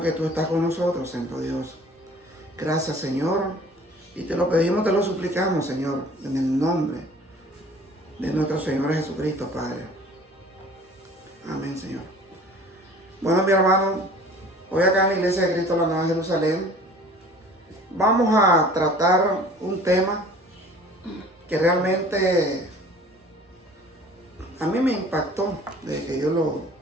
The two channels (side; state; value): both; normal; correlation 0.48